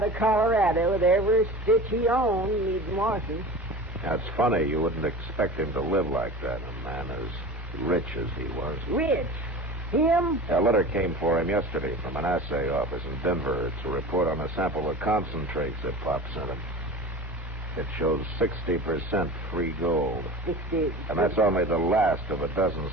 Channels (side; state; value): both; normal; correlation 0.34